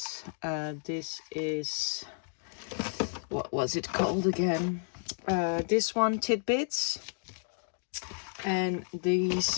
This is, what was it called again? This one, Tidbits. And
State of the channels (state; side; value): silent; right; digital silence